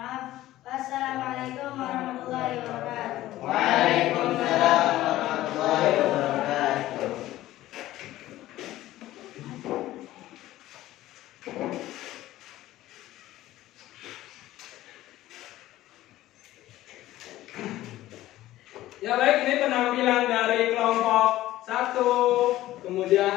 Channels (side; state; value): right; quieter; 15.3 dB